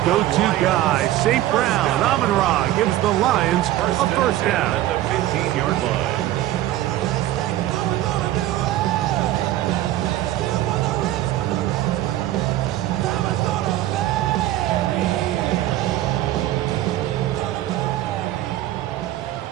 go-to guy, St. Brown, Amon-Ra gives the Lions a first down. At the 15-yard line.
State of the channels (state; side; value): quieter; left; 14.3 dB